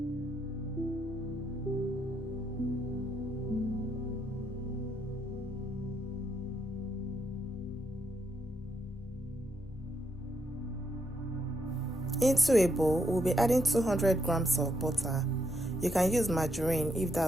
Into a bowl, we'll be adding 200 grams of butter. You can use margarine if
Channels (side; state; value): both; normal; correlation 0.77